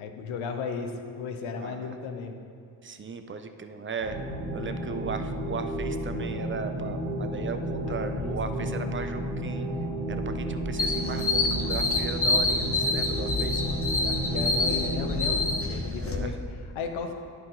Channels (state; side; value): normal; both; correlation 0.16